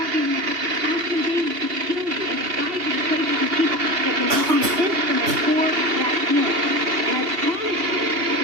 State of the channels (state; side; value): late; left; 2.8 ms